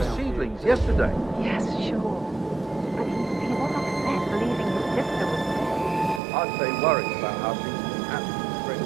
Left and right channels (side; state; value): left; drops out; at 6.2 s